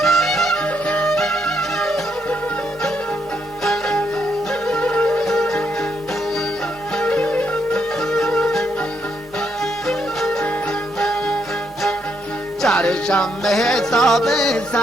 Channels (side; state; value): both; normal; correlation 0.76